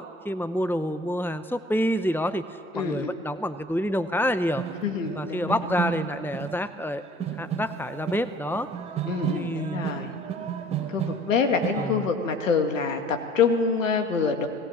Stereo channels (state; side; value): normal; both; correlation 0.51